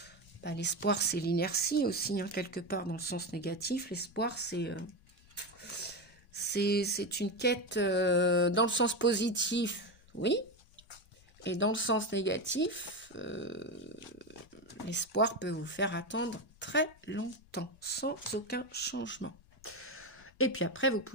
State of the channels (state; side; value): noise; left; rumble, 26 dB below the sound